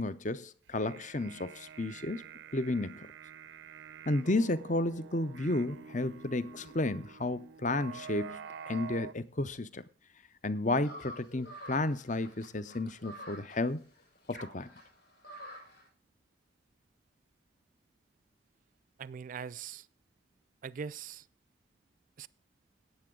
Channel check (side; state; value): both; normal; correlation 0.49